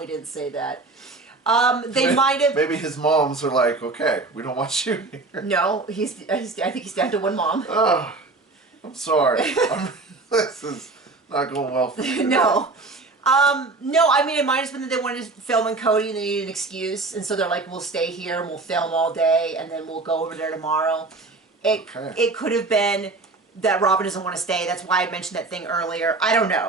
didn't say that. They might have. Maybe his moms are like, okay, we don't want you here. No, I think he's down to one mom. Oh, I'm sorry. This is not going well for you. No. No, I mean, it might have been that they wanted to film in Cody and they needed an excuse, and so they're like, we'll stay here and we'll film all day, and then we'll go over there tomorrow. It could have been that Robin doesn't want to stay. That's why I mentioned that thing earlier. I don't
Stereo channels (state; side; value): quieter; left; 3.5 dB